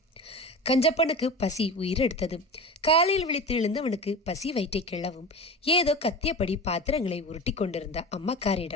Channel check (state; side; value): normal; both; correlation 0.31